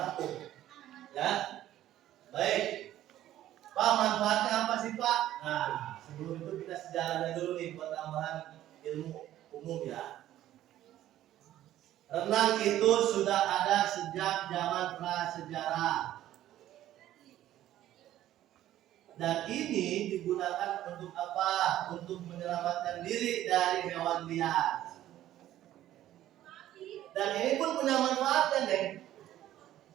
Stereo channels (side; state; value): left; quieter; 13.1 dB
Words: rapuh. Ya. Baik. Pak, manfaatnya apa sih, Pak? Nah, sebelum itu kita sejarahnya dulu nih buat tambahan ilmu umum ya. Renang itu sudah ada sejak zaman prasejarah. Dan ini digunakan untuk apa? Untuk menyelamatkan diri dari hewan liar. Dan ini pun punya manfaatnya, deh.